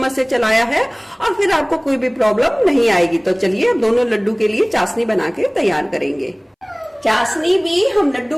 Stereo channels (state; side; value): identical; both; correlation 1.00